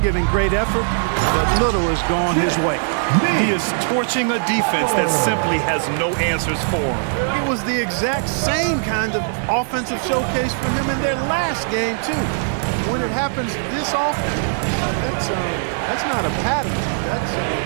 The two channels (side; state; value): left; silent; 66 dB below the other